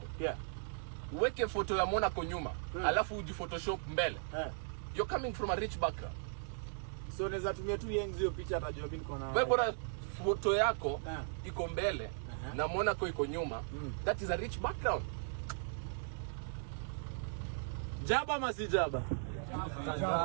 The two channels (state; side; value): silent; left; digital silence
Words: Yeah. Uweke photo ya Monaco nyuma. Alafu uji Photoshop mbele. You're coming from a rich background. So naweza tumia tu Yengs hiyo picha atajua mimi niko na. Wewe bora photo yako iko mbele na Monaco iko nyuma. That is a rich background. Jaba ama si Jaba?